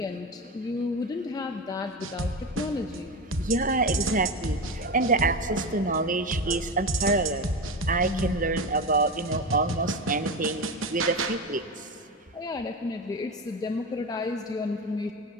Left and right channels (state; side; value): normal; both; correlation 0.21